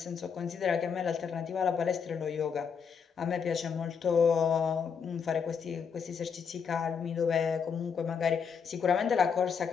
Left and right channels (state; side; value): quieter; right; 6.5 dB